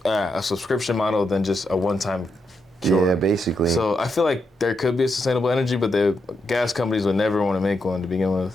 a subscription model than just a one-time cure. Yeah, basically. So I feel like there could be a sustainable energy, but the gas companies would never want to make one to begin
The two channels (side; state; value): both; normal; correlation 0.82